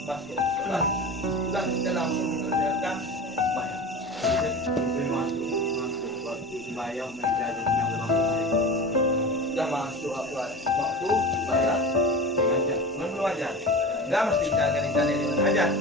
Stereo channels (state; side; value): normal; both; correlation 0.31